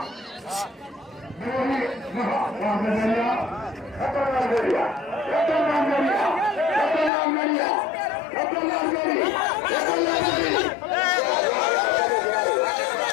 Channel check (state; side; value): drops out; right; at 7.1 s